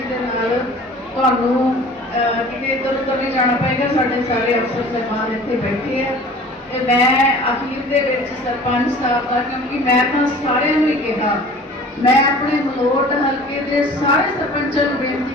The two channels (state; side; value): normal; both; correlation 0.45